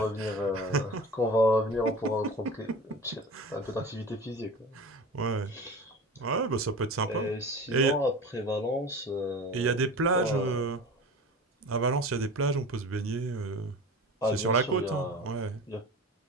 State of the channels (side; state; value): both; normal; correlation 0.34